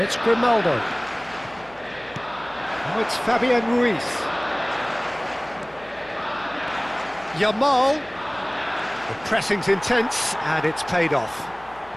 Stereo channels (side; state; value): left; noise; hum, 25 dB below the sound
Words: it's Grimaldo. Now it's Fabian Ruiz. Yamal. The pressing's intense, and it's paid off.